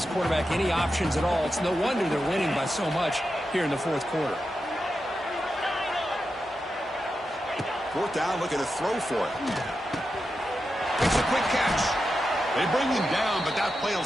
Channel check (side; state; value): both; normal; correlation 0.89